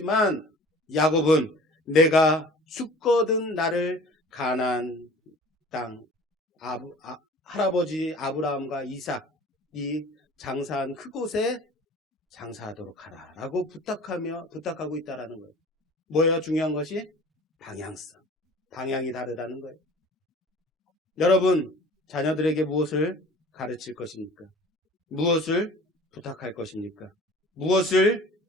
야곱은 내가 죽거든 나를 가나안 땅 할아버지 아브라함과 이삭이 장사한 그곳에 장사하도록 하라라고 부탁하고 있다라는 거예요. 뭐예요? 중요한 것이 방향성. 방향이 다르다는 거예요. 여러분, 자녀들에게 무엇을 가르칠 것입니까? 무엇을 부탁할 것입니까? 무엇을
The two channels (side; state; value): both; normal; correlation 0.45